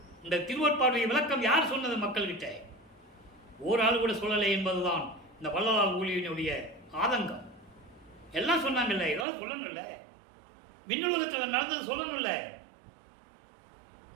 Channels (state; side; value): drops out; left; at 9.2 s